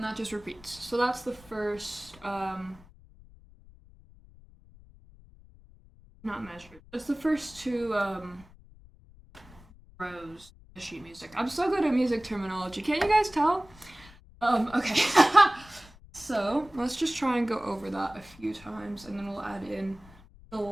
that just repeats. So that's the first, not measured. That's the first two rows of sheet music. I'm so good at music terminology. Can't you guys tell? Okay. So let's just try and go over that a few times, and then we'll add in the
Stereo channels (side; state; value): left; noise; rumble, 23 dB below the sound